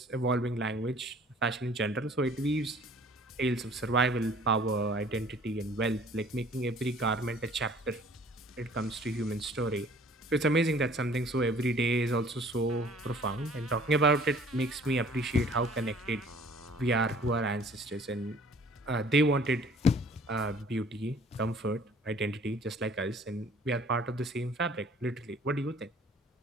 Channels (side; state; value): both; normal; correlation 0.53